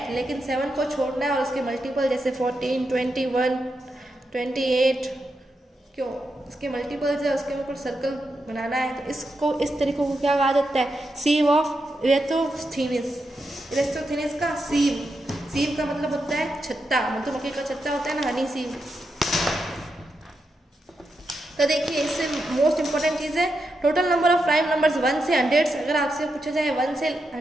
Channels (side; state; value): both; normal; correlation 0.85